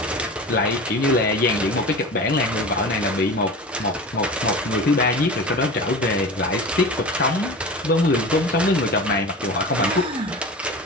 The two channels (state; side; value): normal; both; correlation 0.33